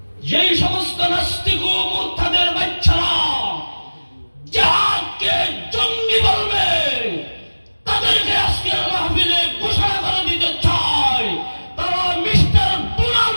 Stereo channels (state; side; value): inverted; both; correlation -1.00